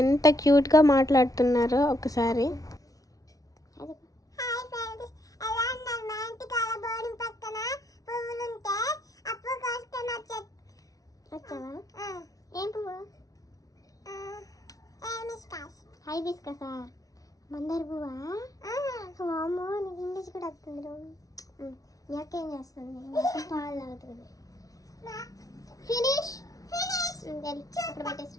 ఎంత క్యూట్గా మాట్లాడుతున్నారో ఒకసారి. ఏం పువ్వు? హైబిస్కసా? మందార పువ్వా? వామ్మో, నీకు ఇంగ్లీష్ కూడా వస్తుంది. మీ అక్క ఏం చేస్తుంది? పాలు తాగుతుంది. ఫినిష్ అక్కడ పెట్టేసి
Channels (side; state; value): right; late; 0.18 ms